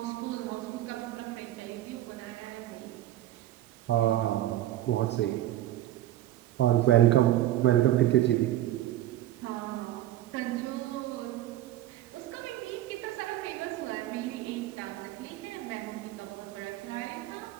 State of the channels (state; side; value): quieter; left; 13.7 dB